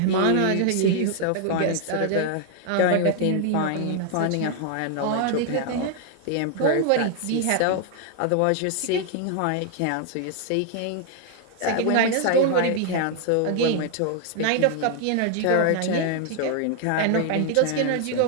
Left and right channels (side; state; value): both; different; correlation 0.00